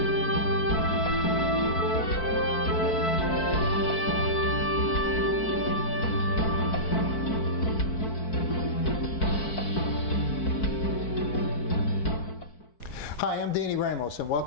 Hi, I'm Danny Ramos, and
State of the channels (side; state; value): right; late; 4.5 ms